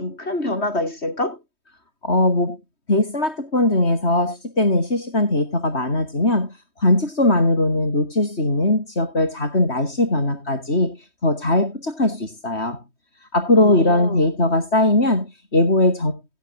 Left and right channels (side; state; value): right; late; 3.2 ms